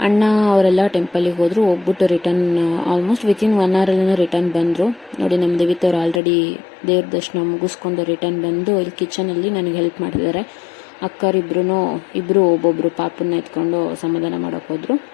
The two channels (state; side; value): drops out; right; at 6.2 s